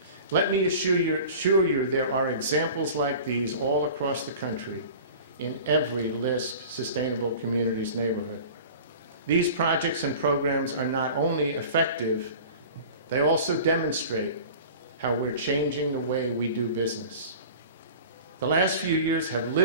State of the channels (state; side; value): inverted; both; correlation -0.40